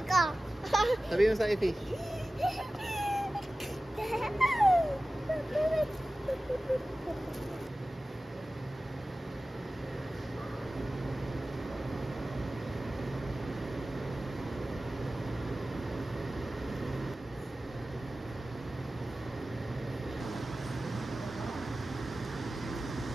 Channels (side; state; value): both; normal; correlation 0.96